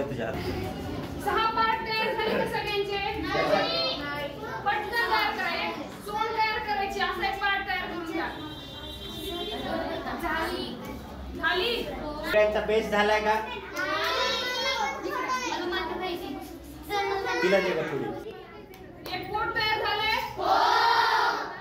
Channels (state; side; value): identical; both; correlation 1.00